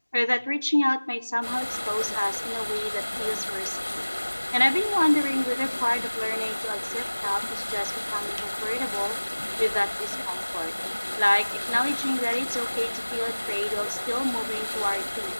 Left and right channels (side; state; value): both; inverted; correlation -1.00